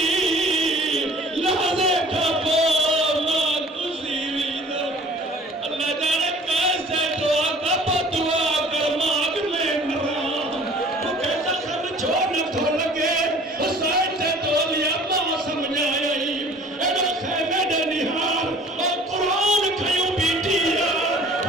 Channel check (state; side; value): normal; both; correlation 0.49